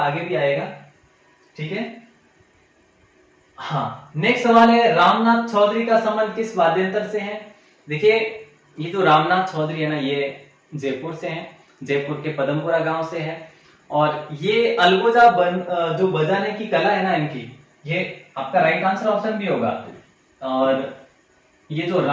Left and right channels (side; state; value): both; identical; correlation 1.00